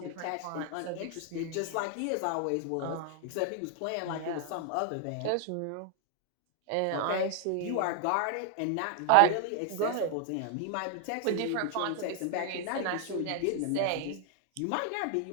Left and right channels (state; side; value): different; both; correlation 0.00